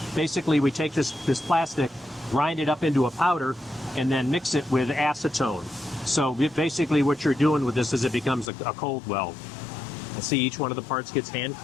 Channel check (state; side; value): drops out; right; at 8.5 s